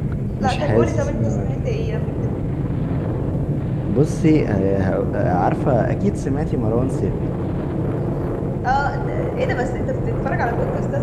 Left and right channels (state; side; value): identical; both; correlation 1.00